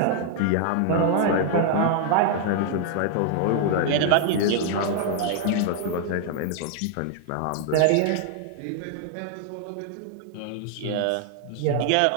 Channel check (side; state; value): both; different; correlation 0.00